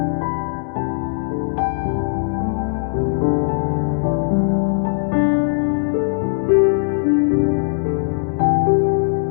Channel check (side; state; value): right; silent; 62 dB below the other